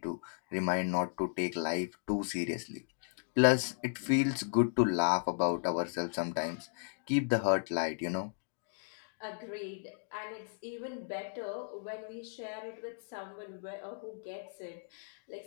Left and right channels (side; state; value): right; silent; digital silence